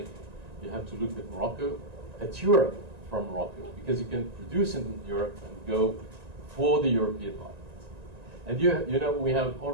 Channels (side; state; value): left; late; 1.9 ms